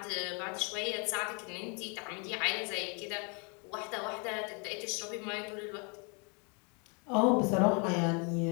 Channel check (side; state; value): right; quieter; 35.2 dB